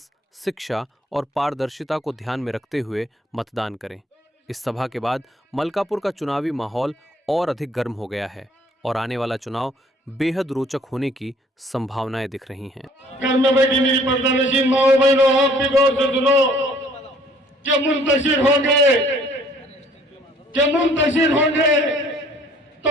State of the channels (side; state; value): both; normal; correlation 0.58